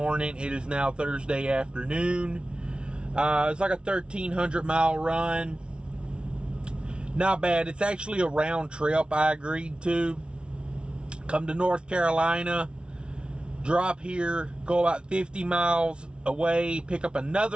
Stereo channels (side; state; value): left; late; 0.057 ms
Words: It is now Thursday afternoon. It's like a 1,300 mile run. Not bad. It's actually a round trip I agreed to. Come to North Carolina, drop here, go about 50 miles away, pick up